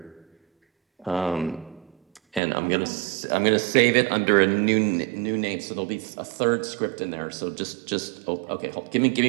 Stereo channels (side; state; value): left; drops out; at 2.4 s